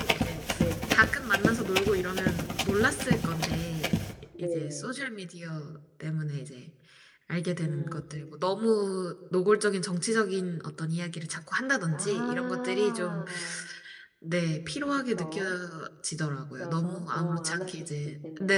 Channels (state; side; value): identical; both; correlation 1.00